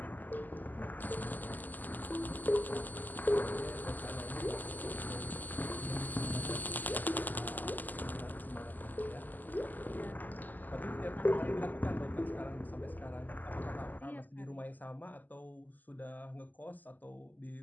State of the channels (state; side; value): late; right; 0.084 ms